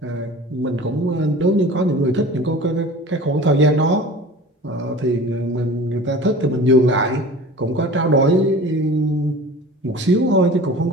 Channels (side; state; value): both; normal; correlation 0.39